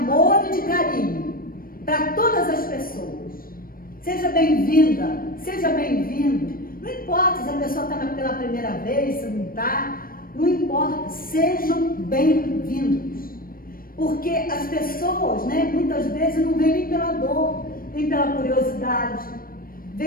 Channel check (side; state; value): right; late; 0.42 ms